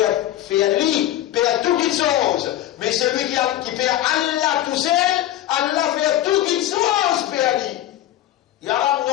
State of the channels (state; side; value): quieter; right; 13.5 dB